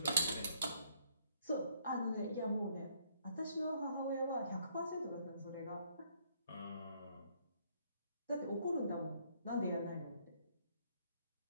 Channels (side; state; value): both; inverted; correlation -0.67